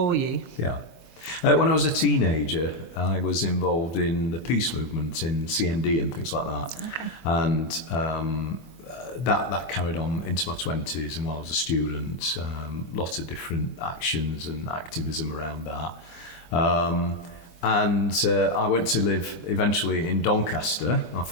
you? Yeah. When I was a teenager, I was involved in the peace movement in CND and things like that. Okay. And that carried on into my 20s, and while I was a student, lots of different actions and activism around that. And I went to live eventually in Doncaster. My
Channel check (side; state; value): right; late; 24 ms